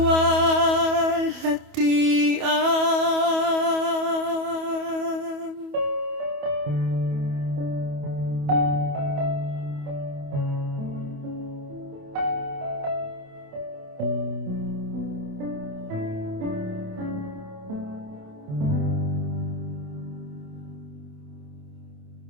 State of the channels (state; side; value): late; left; 28 ms